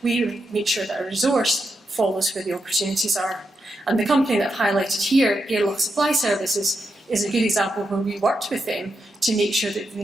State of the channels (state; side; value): normal; both; correlation 0.85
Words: We make sure that our resource follows where the opportunities are. And the company that I've highlighted here, Airlock Supply Services, is a good example where we worked with them to make sure that we